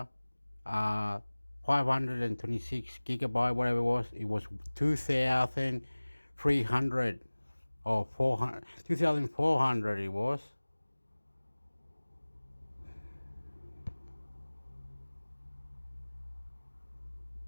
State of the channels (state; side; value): inverted; both; correlation -1.00